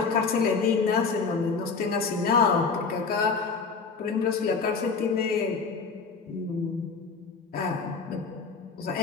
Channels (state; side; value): quieter; right; 4.9 dB